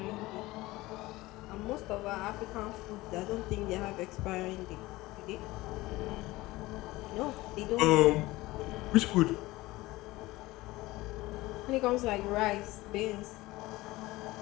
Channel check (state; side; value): quieter; right; 19.4 dB